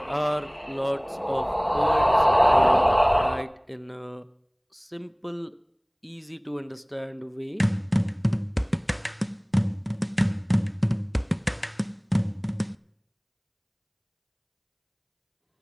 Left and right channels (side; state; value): both; identical; correlation 1.00